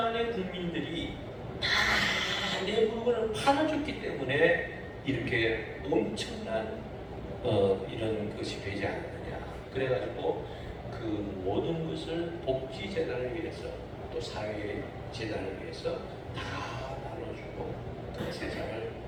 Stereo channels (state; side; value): identical; both; correlation 1.00